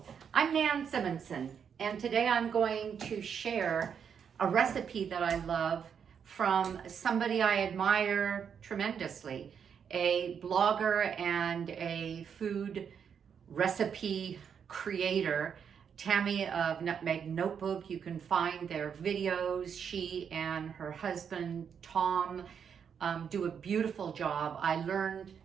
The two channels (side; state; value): left; quieter; 7.4 dB